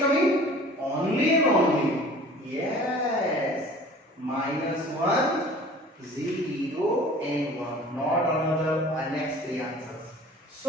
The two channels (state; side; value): normal; both; correlation 0.47